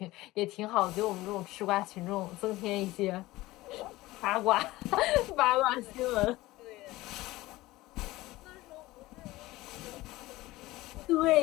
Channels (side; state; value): right; quieter; 18.5 dB